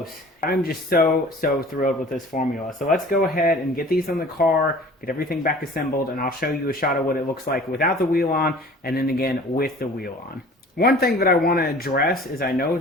I'm just so thrilled with this formula. So let's go ahead and get these on the car, get everything back assembled, and I'll show you a shot of what it looks like without the wheel on, and then again with the wheel on. One thing that I want to address is I know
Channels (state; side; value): normal; both; correlation 0.45